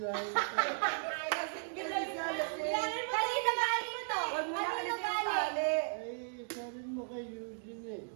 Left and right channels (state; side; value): silent; left; digital silence